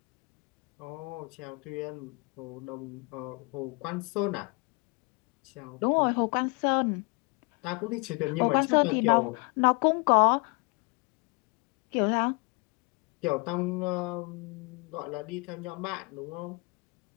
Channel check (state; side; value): quieter; right; 30.0 dB